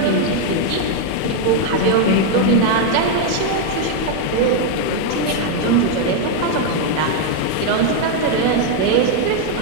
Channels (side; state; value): both; different; correlation 0.00